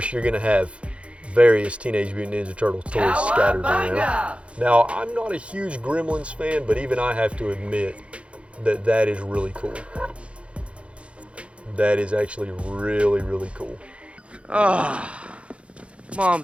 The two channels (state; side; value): late; left; 0.060 ms